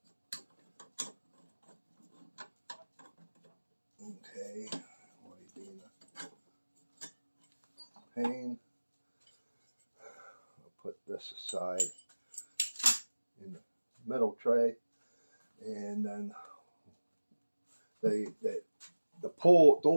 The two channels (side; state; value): both; inverted; correlation -1.00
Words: Okay, why are you being a pain? I'll put this aside in the middle tray, and then the